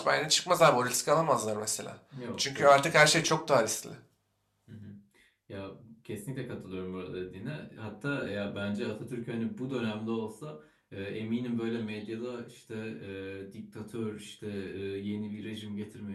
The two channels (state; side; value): identical; both; correlation 1.00